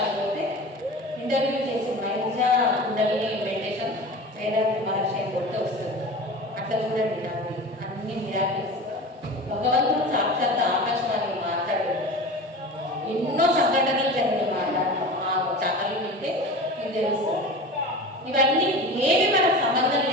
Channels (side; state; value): both; normal; correlation 0.33